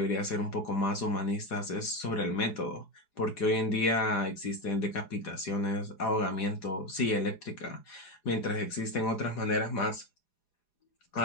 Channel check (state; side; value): late; right; 4.9 ms